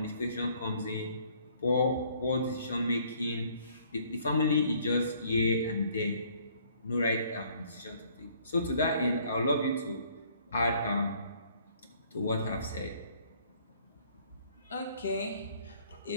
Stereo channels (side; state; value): both; inverted; correlation -0.61